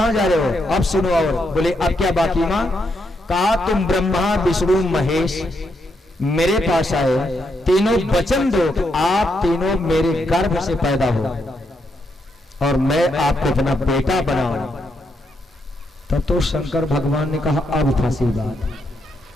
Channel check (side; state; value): both; normal; correlation 0.80